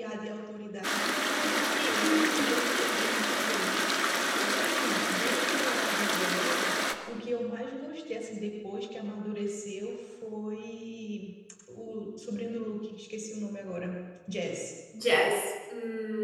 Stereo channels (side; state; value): both; identical; correlation 1.00